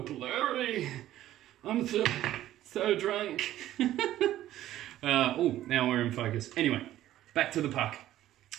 blurry. I'm so drunk. Oh, now we're in focus. Anyway, back to the puck.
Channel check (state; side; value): quieter; left; 13.5 dB